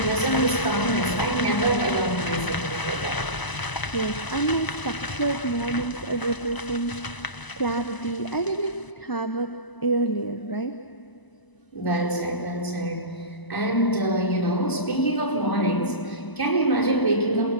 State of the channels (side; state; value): right; late; 1.0 ms